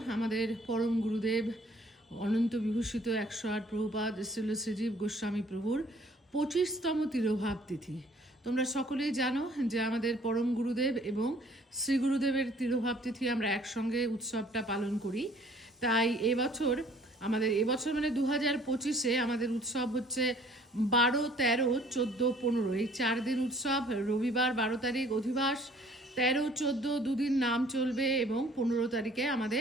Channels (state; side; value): normal; both; correlation 0.57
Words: আমাদের পরম গুরুদেব অনন্ত বিভূষিত 108 প্রভুপাদ শ্রীল শ্রীজীব গোস্বামী প্রভুর 25তম তিরোভাব তিথি। তোমরা সকলেই জানো যে আমাদের পরম গুরুদেব এবং শ্রী গুরুদেবের তিরোভাব তিথি আমরা একসঙ্গে উৎসবটা পালন করি। তাই এবছর মানে 2025-এ আমাদের উৎসব হচ্ছে 12, 13, 14, 15 এই 4 দিন উৎসব। রবিবার 12 তারিখ অধিবাস, 13, 14 দুদিন নাম চলবে এবং 15 তারিখে